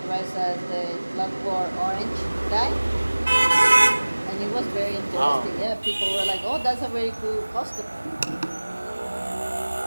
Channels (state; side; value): inverted; both; correlation -1.00